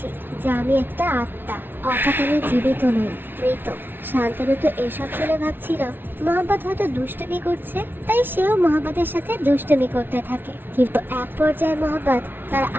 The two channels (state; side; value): late; left; 0.10 ms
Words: যে আমি একটা আত্মা, অর্থাৎ আমি জীবিত নই, মৃত। শান্তনু তো এসব শুনে ভাবছিল মহাব্বত হয়তো দুষ্টুমি করছে, তাই সেও মহাব্বতের সাথে দুষ্টুমি করতে থাকে। কিন্তু এক পর্যায়ে মহাব্বত তার